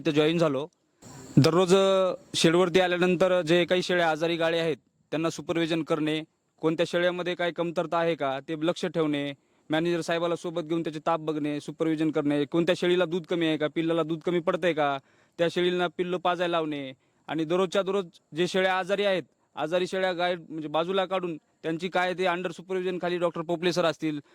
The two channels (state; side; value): identical; both; correlation 1.00